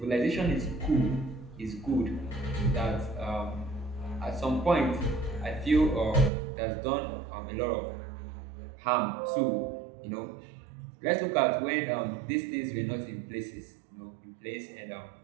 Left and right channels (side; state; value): left; drops out; at 6.3 s